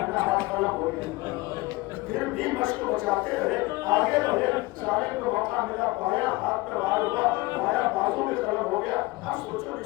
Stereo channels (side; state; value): right; quieter; 21.5 dB